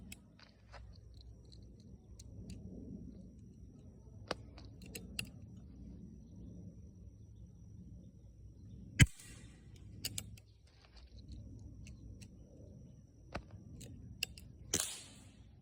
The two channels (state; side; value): identical; both; correlation 1.00